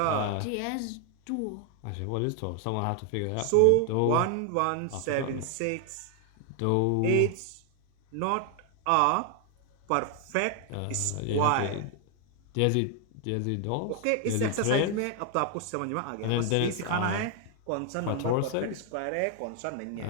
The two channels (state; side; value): different; both; correlation 0.00